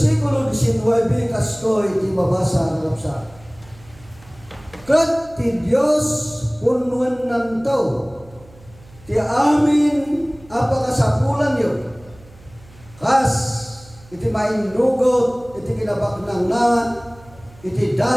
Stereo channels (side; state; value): right; noise; hum, 24 dB below the sound